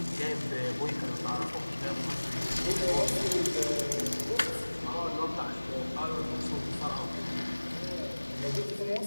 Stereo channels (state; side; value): inverted; both; correlation -1.00